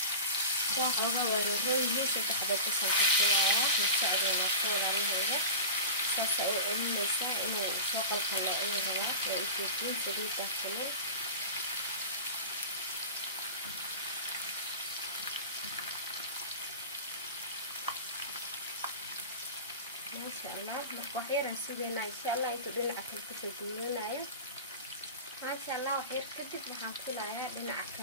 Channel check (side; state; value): both; inverted; correlation -0.31